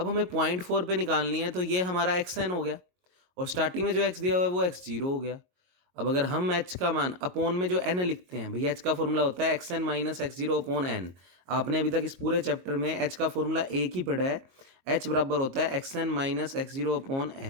हमें 0.4 पे निकालनी है तो ये हमारा एक्स एन हो गया, और स्टार्टिंग में जो एक्स दिया हुआ है वो x0 हो गया। अब अगर हम h का मान अपॉन में जो n लिखते हैं, भैया h का फॉर्मूला होता है xn minus x0 upon n। आपने अभी तक इस पूरे चैप्टर में h का फॉर्मूला एक ही पढ़ा है, h बराबर होता है xn minus x0 upon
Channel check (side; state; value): left; late; 22 ms